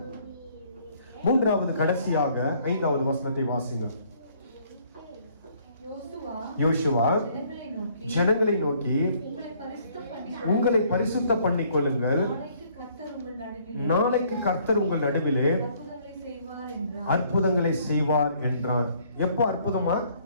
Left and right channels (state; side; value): inverted; both; correlation -0.63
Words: மூன்றாவது, கடைசியாக 5வது வசனத்தை வாசிங்க. யோசுவா ஜனங்களை நோக்கி உங்களை பரிசுத்த பண்ணிக் கொள்ளுங்கள், நாளைக்கு கர்த்தர் உங்கள் நடுவிலே அற்புதங்களை செய்வார் என்றார். எப்போ அற்புதமா?